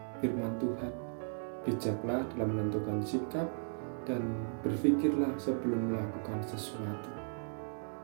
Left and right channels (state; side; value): silent; left; 54 dB below the other